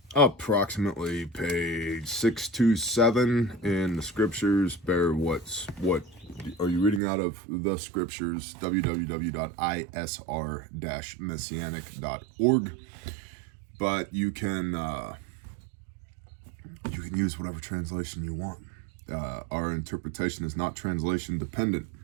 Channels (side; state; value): left; drops out; at 7.0 s